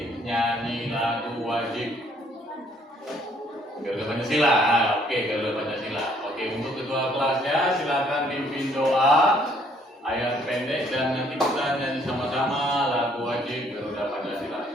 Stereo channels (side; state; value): both; normal; correlation 0.64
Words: nyanyi lagu wajib Garuda Pancasila. Oke, Garuda Pancasila. Oke, untuk ketua kelasnya silakan pimpin doa ayat pendek dan nanti kita nyanyi sama-sama lagu wajib Garuda Pancasila.